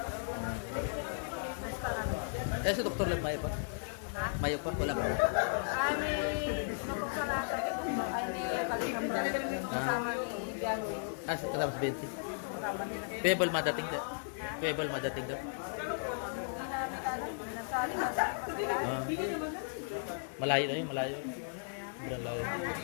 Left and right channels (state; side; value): silent; right; digital silence